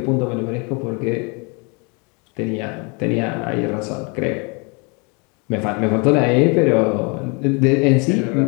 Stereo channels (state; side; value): quieter; right; 31.8 dB